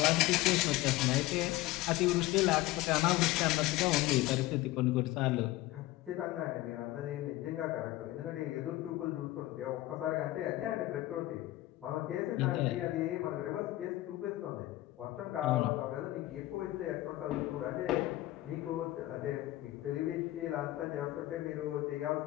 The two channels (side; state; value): right; quieter; 17.1 dB